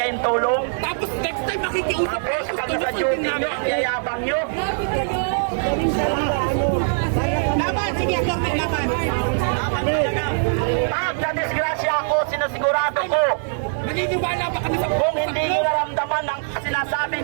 tulong? Tapos next time makikiusap Tapos, kami sa duty nyo, ang yayabang nyo. Laban, sige, Atty. Laban. Pag na-disgrasya ako, sinasigurado ko, Naniniwala ba kami sa kung hindi nyo naramdaman ang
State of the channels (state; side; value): silent; left; 64 dB below the other